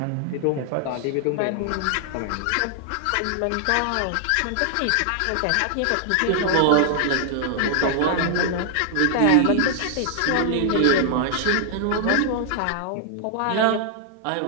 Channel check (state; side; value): different; both; correlation 0.00